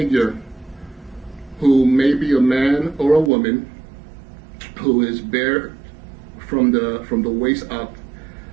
who may be a man or a woman, who is bare from the waist up,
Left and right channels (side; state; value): left; drops out; at 3.3 s